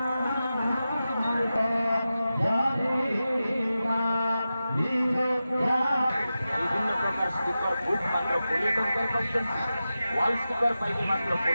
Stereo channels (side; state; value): both; inverted; correlation -0.93